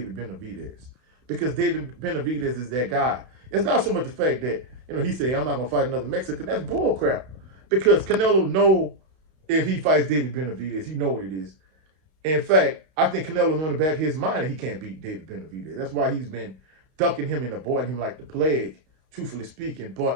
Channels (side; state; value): left; late; 32 ms